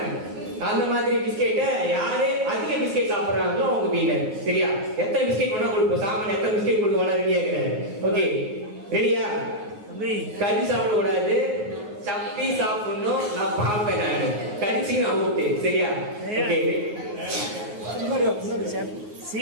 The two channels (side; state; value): left; late; 9.5 ms